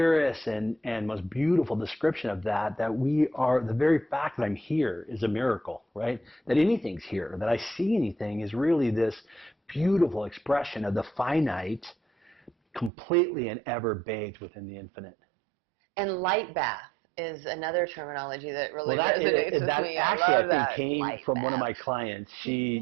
and most beautiful description of that we are, the very fact that I'm here is a miracle, right? That anything's here, that I see anything is really this beautiful expression of the finite, completely and ever bathed within the infinite. And light bath is another terminology that really resonates with me. Actually, I think came from one of my clients.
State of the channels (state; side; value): drops out; left; at 12.9 s